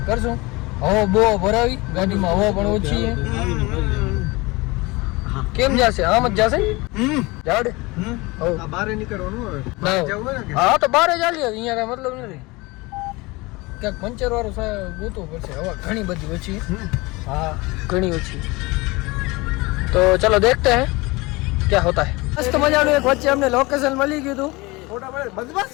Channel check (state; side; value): quieter; right; 23.4 dB